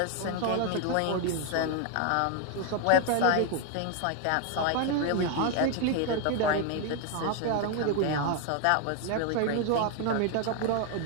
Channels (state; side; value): different; both; correlation 0.01